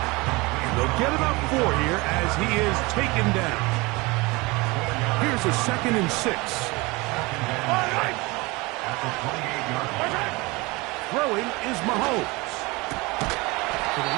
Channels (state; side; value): quieter; left; 24.2 dB